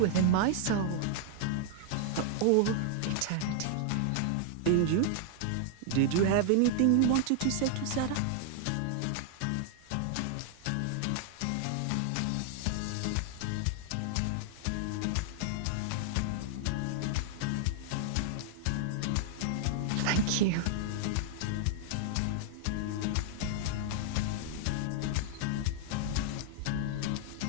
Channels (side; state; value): both; different; correlation 0.00